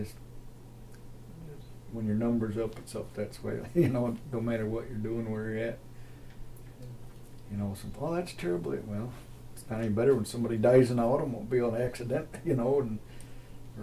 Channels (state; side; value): identical; both; correlation 1.00